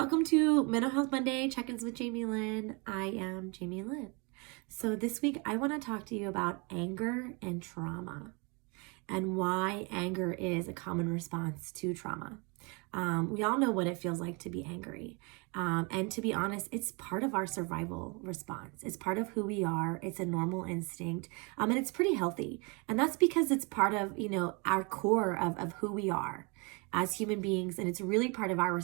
to Mental Health Monday Check-ins with Jamie Lynn. I am Jamie Lynn. So this week I want to talk to you about anger and trauma and why anger is a common response to trauma. We all know what it feels like to be angry. And to be honest, it's part of our survival response. It's part of who we are. It's a normal instinct. And it's pretty healthy. And that's because it's part of, our core of who we are as human beings. And it's really part of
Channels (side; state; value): left; quieter; 30.9 dB